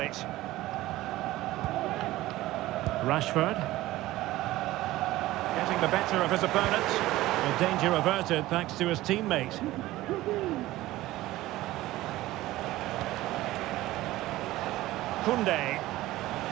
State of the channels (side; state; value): left; quieter; 16.8 dB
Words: Rashford. Getting the better of his opponent. The danger averted thanks to his teammate. Koundé.